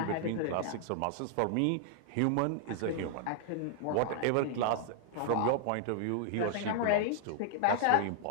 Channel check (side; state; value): both; different; correlation -0.01